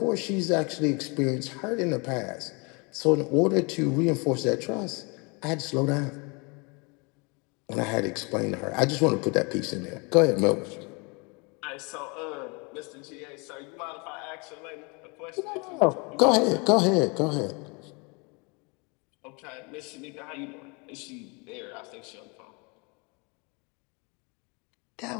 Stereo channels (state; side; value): quieter; right; 30.6 dB